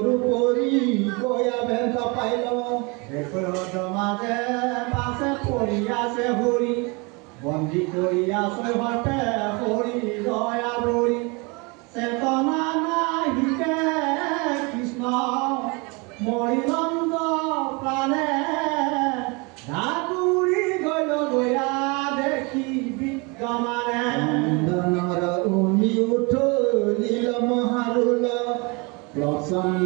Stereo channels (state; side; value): quieter; left; 29.2 dB